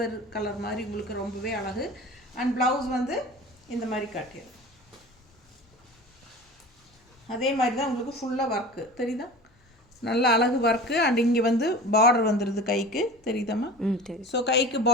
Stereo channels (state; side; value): normal; both; correlation 0.36